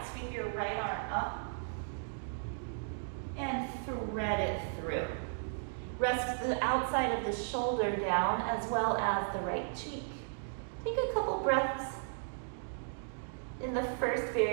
Sweep your right arm up and thread it through. Rest the outside of the shoulder down as well as the right cheek. Take a couple breaths. In the first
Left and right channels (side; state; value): left; silent; digital silence